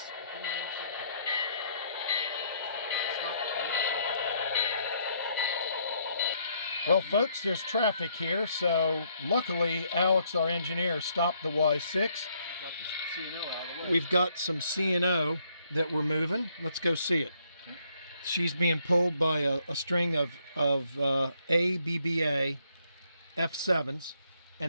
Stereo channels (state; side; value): inverted; both; correlation -0.70